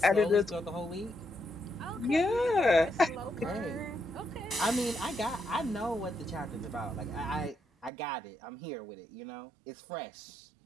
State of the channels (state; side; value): drops out; left; at 7.9 s